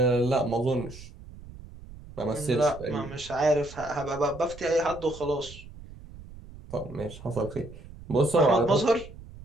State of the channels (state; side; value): noise; right; rumble, 17 dB below the sound